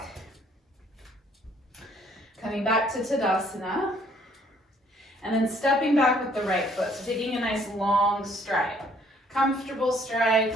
Coming back to Tadasana, and then stepping back with the right foot. So taking a nice long stride, comfortable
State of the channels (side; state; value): both; normal; correlation 0.62